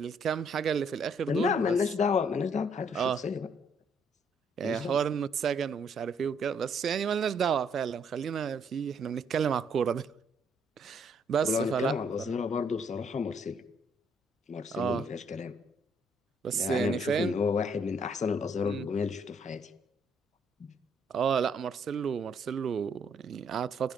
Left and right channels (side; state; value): both; normal; correlation 0.68